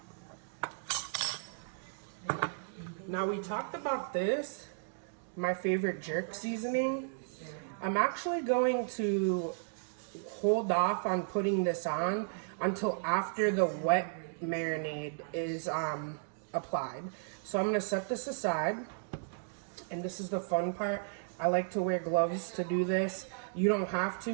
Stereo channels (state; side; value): silent; left; digital silence